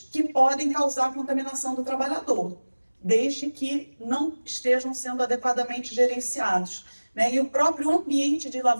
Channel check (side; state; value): both; inverted; correlation -1.00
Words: que podem causar contaminação do trabalhador, desde que não estejam sendo adequadamente gerenciados. Né? E o próprio ambiente de